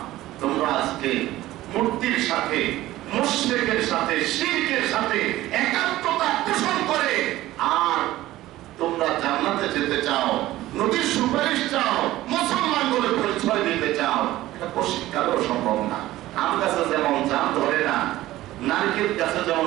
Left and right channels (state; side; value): quieter; left; 15.9 dB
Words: তোমরা আজকে মূর্তির সাথে, মুশরিকের সাথে, শিরকের সাথে একাত্মতা পোষণ করে, আর তোমরা জান্নাতে যেতে চাও, নবীর সুপারিশ চাও, মুসলমান বলে পরিচয় দিতে চাও, এটা পরিষ্কারও সম্ভব না। আম গাছে যেমন জাম ধরে না, নারকেল গাছে